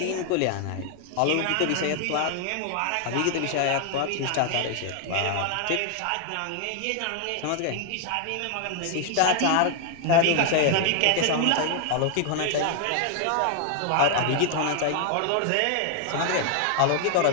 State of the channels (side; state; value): both; different; correlation 0.00